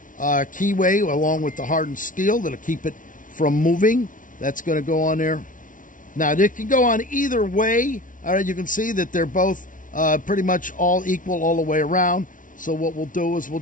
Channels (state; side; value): late; right; 0.38 ms